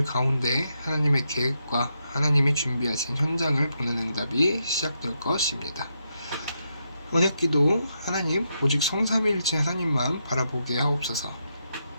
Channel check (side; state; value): both; inverted; correlation -0.82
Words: 가운데 하나님의 계획과 하나님이 준비하신 현장을 보는 응답이 시작될 것입니다. 언약기도 하나님 오직 성삼위일체 하나님만 바라보게 하옵소서.